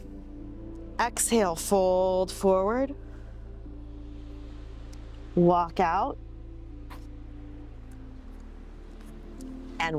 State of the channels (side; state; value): both; identical; correlation 1.00